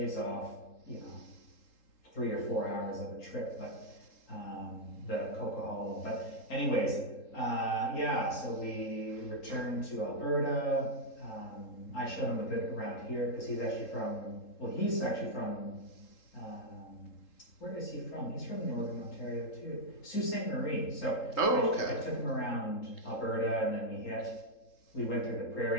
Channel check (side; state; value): right; late; 3.8 ms